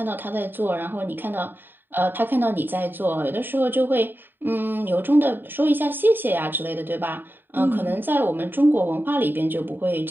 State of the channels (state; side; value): late; left; 0.094 ms